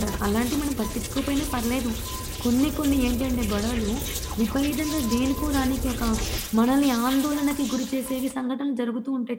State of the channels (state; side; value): identical; both; correlation 1.00